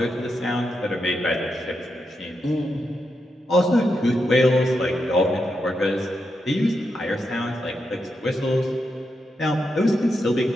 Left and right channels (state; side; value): normal; both; correlation 0.85